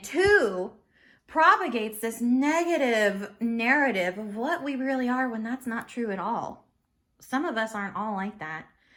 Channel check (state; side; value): identical; both; correlation 1.00